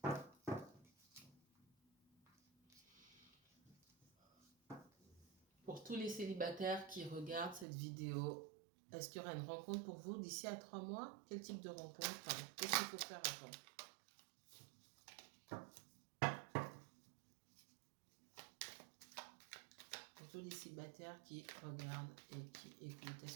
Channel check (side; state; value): left; drops out; at 7.7 s